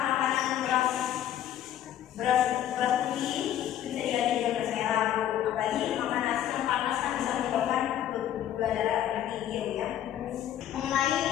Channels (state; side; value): quieter; right; 11.2 dB